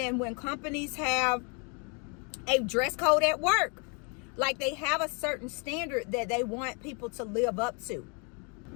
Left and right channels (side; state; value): right; quieter; 35.3 dB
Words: when companies have a dress code at work. Like, they have a certain standard that they want people to live up to.